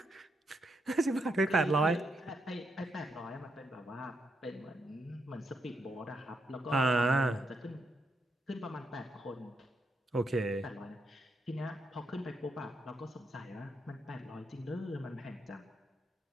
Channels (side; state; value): both; normal; correlation 0.80